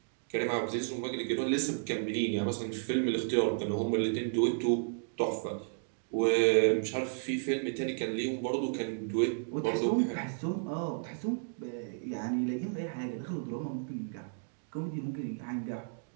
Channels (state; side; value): silent; left; digital silence